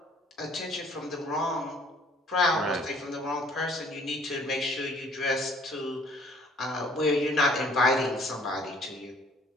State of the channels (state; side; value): normal; both; correlation 0.58